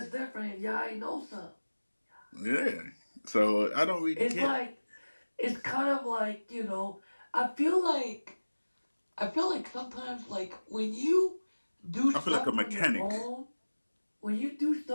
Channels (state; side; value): inverted; both; correlation -1.00